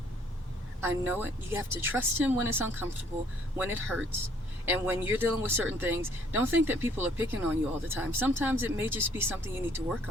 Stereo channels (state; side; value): normal; both; correlation 0.62